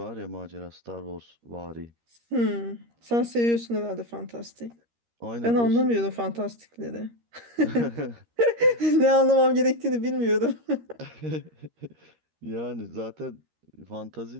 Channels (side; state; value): left; late; 13 ms